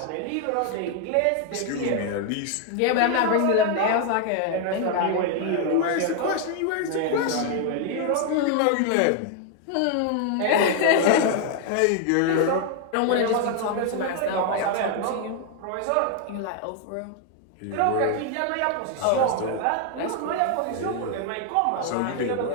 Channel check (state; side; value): different; both; correlation 0.00